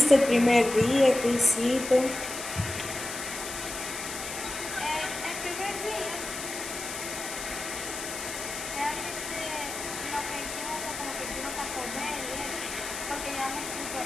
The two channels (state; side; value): noise; left; hiss, 7 dB below the sound